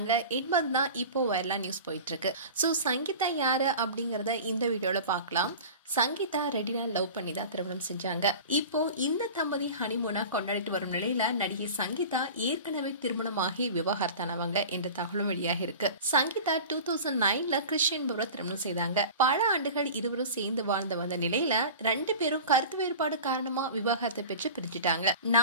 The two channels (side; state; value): both; inverted; correlation -0.36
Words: என்பதுதான் இப்போ வைரலா நியூஸ் போயிட்டு இருக்கு. ஸோ சங்கீதா யாரு அப்படிங்கறத இந்த வீடியோல பார்க்கலாம். சங்கீதா ரெடினா லவ் பண்ணி தான் திருமணம் செஞ்சாங்க. இப்போ இந்த தம்பதி ஹனிமூனா கொண்டாடிட்டு வரும் நிலையில நடிகை சங்கீதா ஏற்கனவே திருமணமாகி விவாகரத்தானவங்க என்ற தகவலும் வெளியாகி இருக்கு. சங்கீதா 2009ல கிறிஸ்டியன் என்பவரை திருமணம் செய்தாங்க. பல ஆண்டுகள் இருவரும் சேர்ந்து வாழ்ந்து வந்த நிலையில 2 பேரும் கருத்து வேறுபாடு காரணமா விவாகரத்தை பெற்று பிரிஞ்சுட்டாங்க.